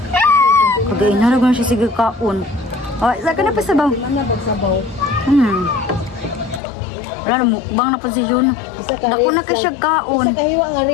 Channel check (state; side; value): drops out; right; at 6.6 s